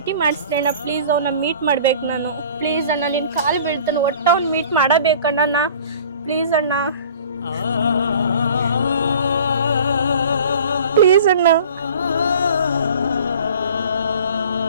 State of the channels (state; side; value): inverted; both; correlation -0.46